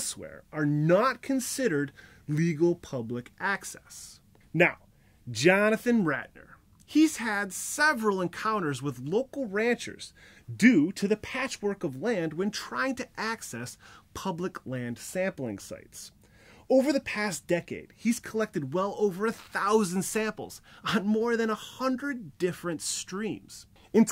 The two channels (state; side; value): identical; both; correlation 1.00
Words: are not considered legal public access. Now, Jonathan Ratner, he's had several encounters with local ranchers due to the patchwork of land when trying to access public land sampling sites. Over the past decade, he's collected well over 1,000 samples on more than 100 different streams. In